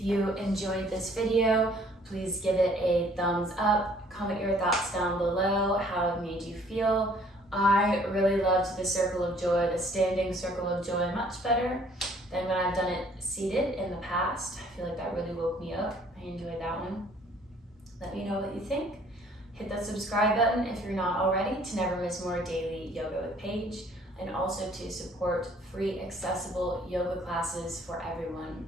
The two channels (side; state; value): both; normal; correlation 0.58